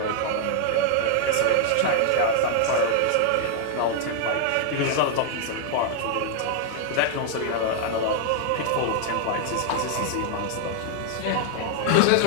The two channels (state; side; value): different; both; correlation 0.00